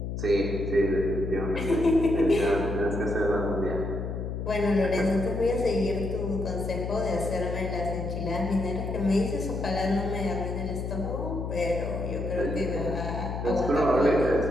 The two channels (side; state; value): left; noise; hum, 4 dB below the sound